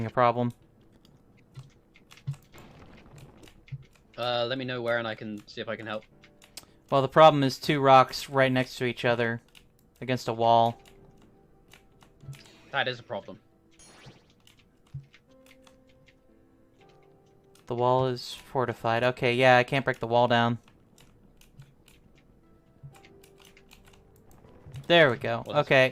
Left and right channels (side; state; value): both; identical; correlation 1.00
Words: a problem. Let me know where and I can see if I can help. Well, the problem is 2 rocks right next to each other against a wall. That is a problem. The wall is fortified. Okay, yeah, I can't break the wall down. There we go.